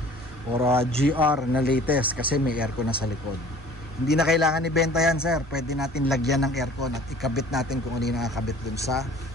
or GR na latest kasi may aircon na sa likod. Hindi na kailangan ibenta yan, sir. Pwede natin lagyan ng aircon at ikabit natin kung ano yung nakakabit dun sa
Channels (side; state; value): both; normal; correlation 0.49